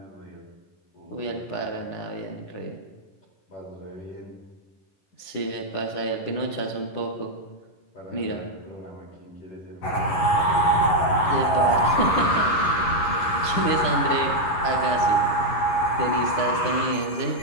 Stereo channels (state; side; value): late; right; 11 ms